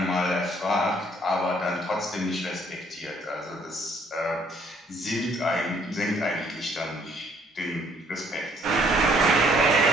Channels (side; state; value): both; normal; correlation 0.63